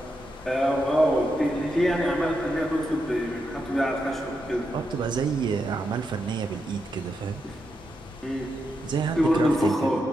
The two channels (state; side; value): normal; both; correlation 0.84